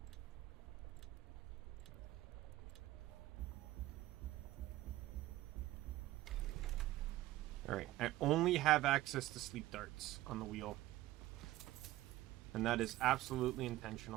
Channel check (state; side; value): quieter; left; 16.1 dB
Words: Alright, I only have access to sleep darts on the wheel. And that is absolutely